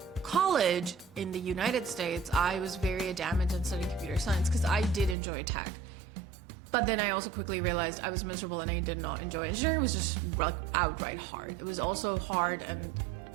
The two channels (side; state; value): left; drops out; at 5.2 s